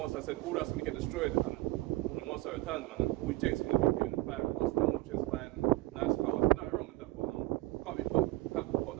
I said all that's gonna get destroyed, and when the Most I returns, man, all Jake's gonna be doing is buying custom watches, buying nice cars. Nothing wrong with that, but can't be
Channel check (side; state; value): left; quieter; 19.1 dB